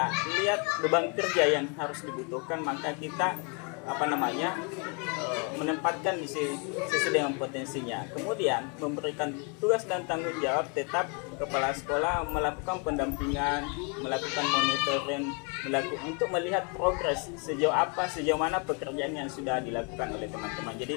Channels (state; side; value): quieter; right; 35.3 dB